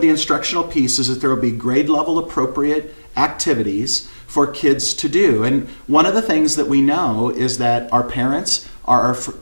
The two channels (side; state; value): both; inverted; correlation -1.00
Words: instructional piece is that there will be grade level appropriate activities for kids to do. And one of the things that we know is that our parents are